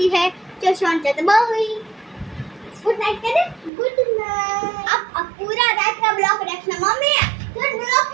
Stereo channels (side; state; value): left; drops out; at 3.7 s